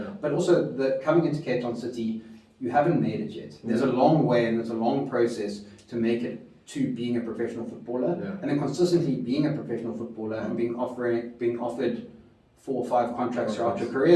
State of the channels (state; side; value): identical; both; correlation 1.00